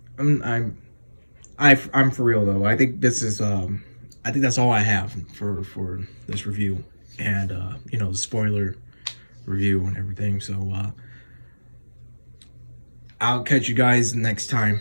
I'm I'm for real though. I think this is I think that's all I have for this review and you know, the spoiler review and everything. So I'll catch you guys next time.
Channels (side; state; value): both; inverted; correlation -1.00